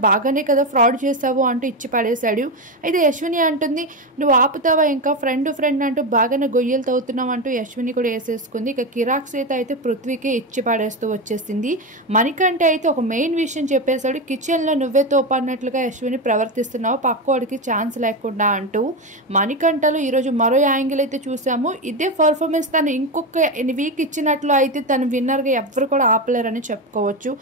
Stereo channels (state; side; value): normal; both; correlation 0.14